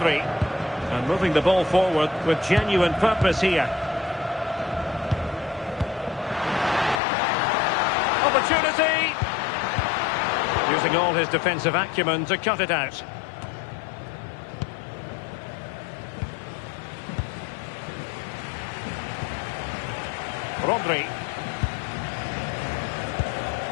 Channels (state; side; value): drops out; right; at 7.0 s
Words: And moving the ball forward with genuine purpose here. Opportunity! Using all his defensive acumen to cut it out. Rodri.